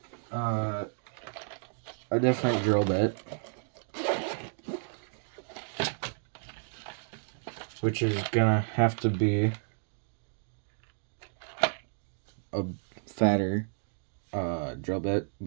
a different drill bit, which is gonna have to be a fatter drill bit,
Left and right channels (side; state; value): left; silent; digital silence